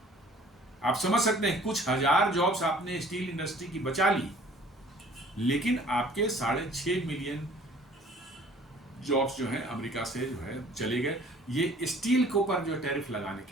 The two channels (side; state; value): both; normal; correlation 0.52